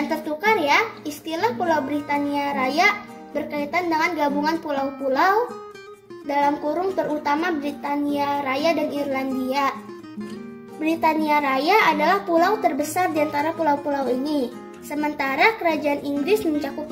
tertukar ya, istilah Pulau Britania Raya berkaitan dengan gabungan pulau-pulau dalam kurung terutama Britania Raya dan Irlandia. Britania Raya adalah pulau terbesar di antara pulau-pulau ini. Sementara Kerajaan Inggris mencakup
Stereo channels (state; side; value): identical; both; correlation 1.00